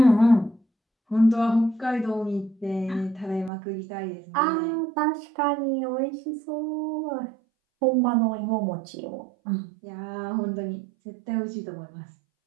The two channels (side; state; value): left; drops out; at 3.5 s